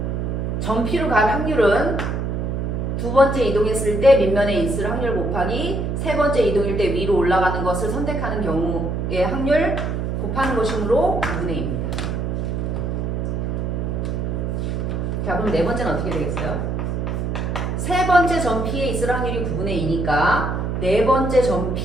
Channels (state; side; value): noise; right; hum, 1 dB below the sound